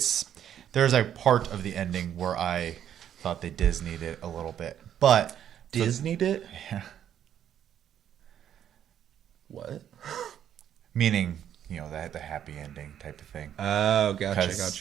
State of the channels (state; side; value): quieter; left; 9.9 dB